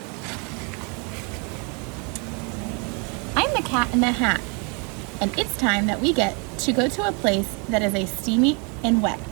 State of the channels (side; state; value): left; quieter; 34.5 dB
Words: I'm the Cat in the Hat, and it's time that we get to go to a place that is a steamy and wet.